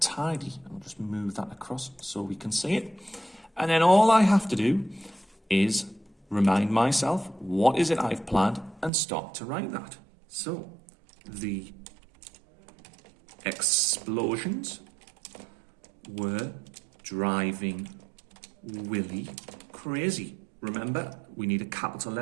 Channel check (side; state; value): left; drops out; at 8.9 s